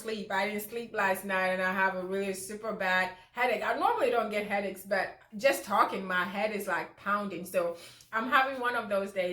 I didn't sleep last night and I have a really super bad headache. I normally don't get headaches, but just talking, my head is like pounding. So I'm having one of those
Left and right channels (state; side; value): identical; both; correlation 1.00